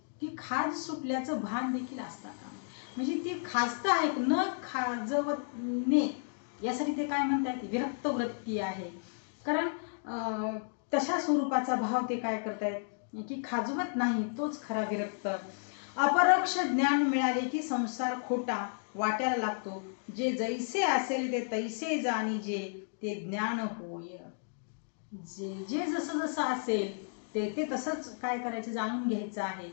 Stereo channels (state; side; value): silent; right; digital silence